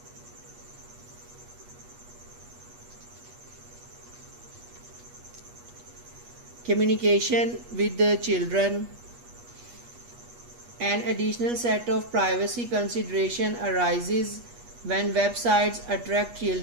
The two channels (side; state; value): left; late; 8.3 ms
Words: Communication with the children. An additional set of privacy consideration arises when websites attract